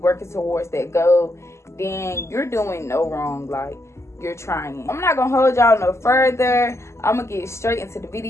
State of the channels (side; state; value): right; late; 0.13 ms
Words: towards that goal, then you're doing no wrong. Like, you're trying. I'm not gonna hold y'all no further. I'm gonna get straight into the